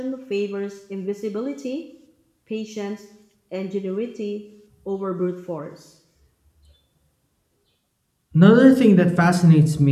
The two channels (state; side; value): identical; both; correlation 1.00